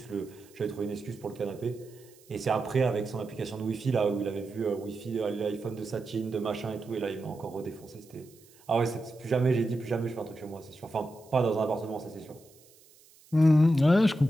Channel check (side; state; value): right; noise; hiss, 27 dB below the sound